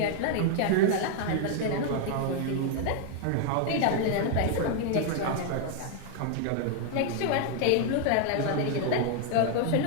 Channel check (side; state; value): both; different; correlation 0.00